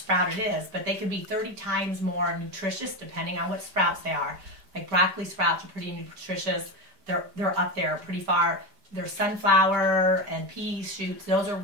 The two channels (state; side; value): late; left; 5.0 ms